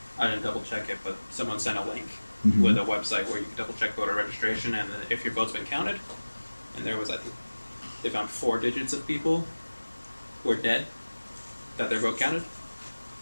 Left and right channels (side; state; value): both; inverted; correlation -1.00